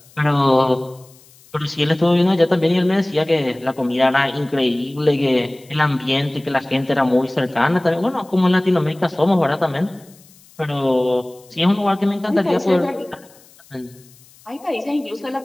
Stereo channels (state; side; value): noise; left; hiss, 27 dB below the sound